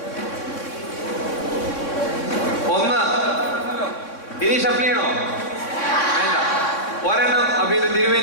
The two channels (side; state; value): right; late; 3.6 ms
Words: 1 ഇനി ഷഫിൾ ചെയ്യണോ? വേണ്ട. ഒരെണ്ണം അപ്പൊ ഇത്